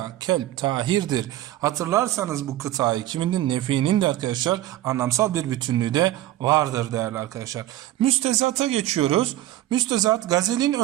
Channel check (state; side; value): quieter; left; 14.4 dB